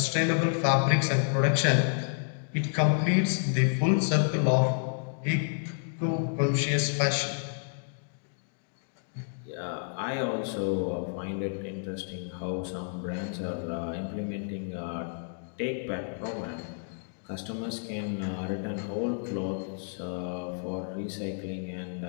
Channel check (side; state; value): right; silent; digital silence